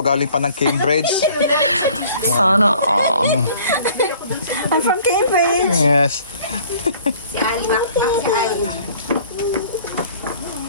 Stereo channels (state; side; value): inverted; both; correlation -0.53